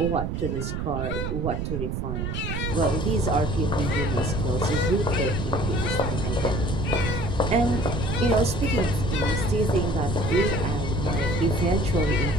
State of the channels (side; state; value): right; noise; rumble, 2 dB below the sound